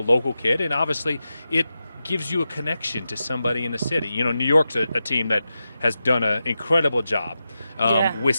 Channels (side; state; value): both; inverted; correlation -0.90